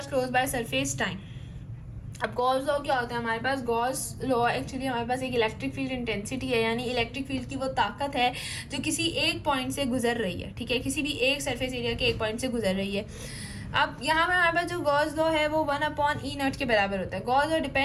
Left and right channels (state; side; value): identical; both; correlation 1.00